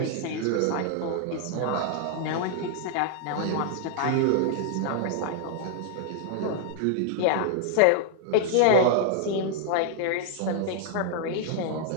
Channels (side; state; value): both; different; correlation -0.01